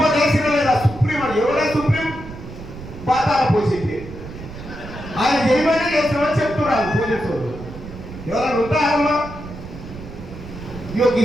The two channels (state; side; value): noise; right; rumble, 13 dB below the sound